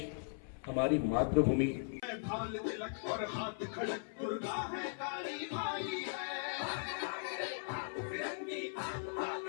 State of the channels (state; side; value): silent; right; 52 dB below the other